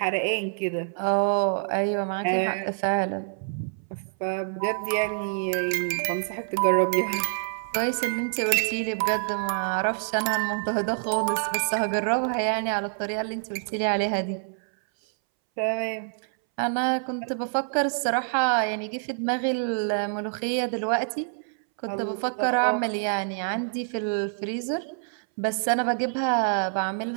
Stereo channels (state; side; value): silent; left; 61 dB below the other